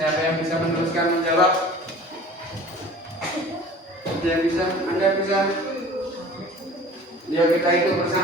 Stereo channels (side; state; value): both; normal; correlation 0.44